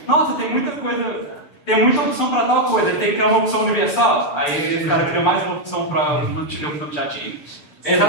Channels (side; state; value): right; late; 6.9 ms